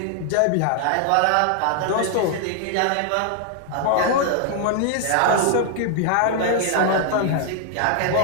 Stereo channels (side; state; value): both; different; correlation 0.00